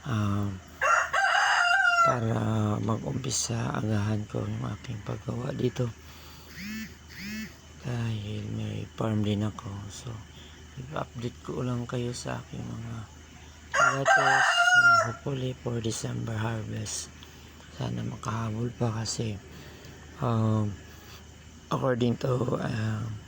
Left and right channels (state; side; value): identical; both; correlation 1.00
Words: para mag-umpisa agahan ko yung aking paggawa dito dahil may farm din ako. So i-update ko lang kayo sa aking mga lettuce, hopefully for December harvest. Sana makahabol pa kasi according to